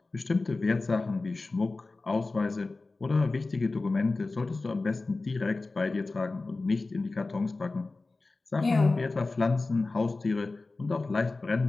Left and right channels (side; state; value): right; quieter; 3.5 dB